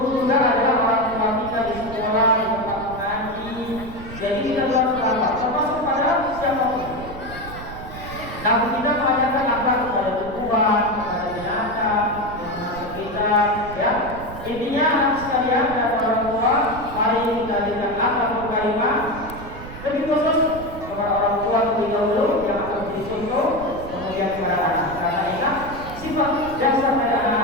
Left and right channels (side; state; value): right; noise; rumble, 13 dB below the sound